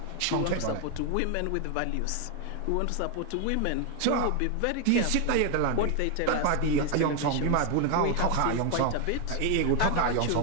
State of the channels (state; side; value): different; both; correlation 0.01